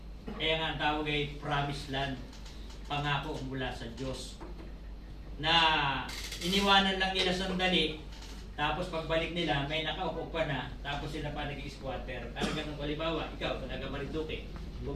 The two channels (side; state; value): both; identical; correlation 1.00